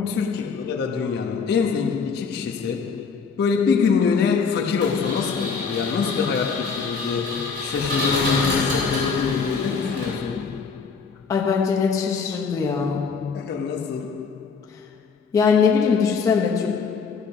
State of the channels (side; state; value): right; quieter; 5.4 dB